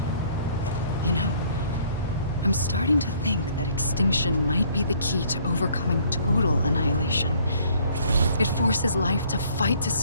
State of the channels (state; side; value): inverted; both; correlation -0.60